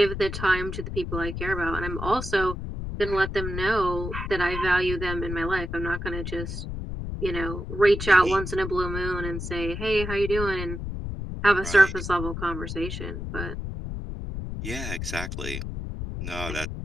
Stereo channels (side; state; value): left; noise; rumble, 5 dB below the sound